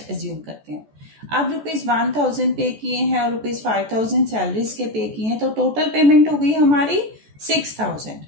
एज्यूम करते हैं. अब ₹1,000 पे किए हैं और ₹5,000 सैलरीज के पे किए हैं, तो टोटल पेमेंट हो गई हमारी 6,000.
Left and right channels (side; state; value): left; late; 14 ms